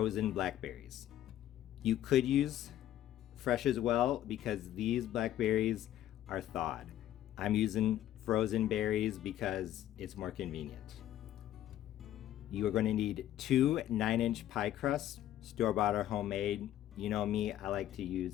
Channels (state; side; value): quieter; right; 12.5 dB